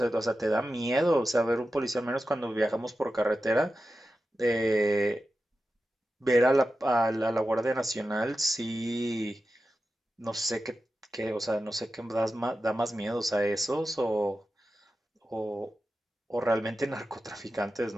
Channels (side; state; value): both; normal; correlation 0.92